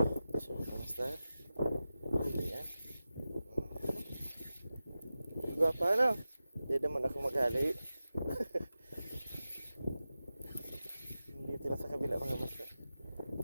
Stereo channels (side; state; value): both; inverted; correlation -0.94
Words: Fish on master. Huli yan. Gwapa ano? Hindi naman ako maghali. Dito lang sa kabila mga master.